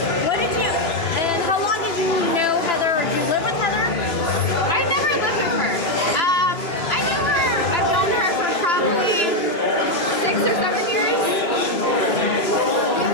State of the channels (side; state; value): right; late; 3.0 ms